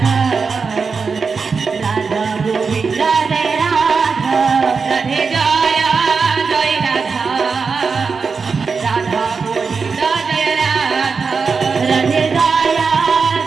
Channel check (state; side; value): quieter; left; 5.1 dB